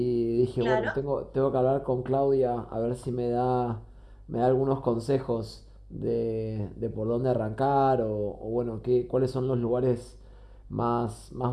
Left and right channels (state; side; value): identical; both; correlation 1.00